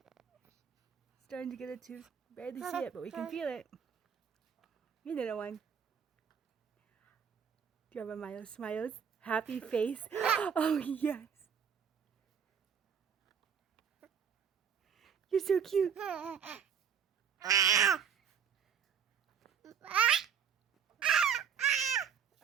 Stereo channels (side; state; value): left; quieter; 7.5 dB